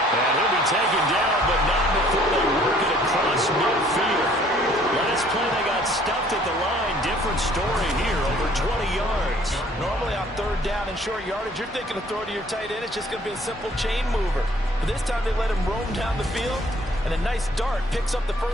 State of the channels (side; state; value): both; normal; correlation 0.58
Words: And he'll be taken down, but not before they work it across midfield. Last play they got stuffed at the line. Different story here, over 20 yards. Normally on 3rd down and short yardage, you're thinking of throw to your tight end. It's just going to be a simple chain mover. But this time they let him roam down the field. And a nice dart picks up the